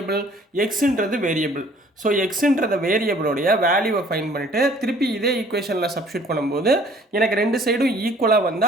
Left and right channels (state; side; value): normal; both; correlation 0.55